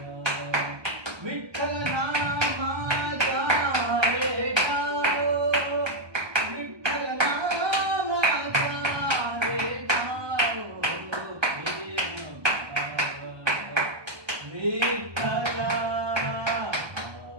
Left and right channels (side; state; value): left; late; 1.4 ms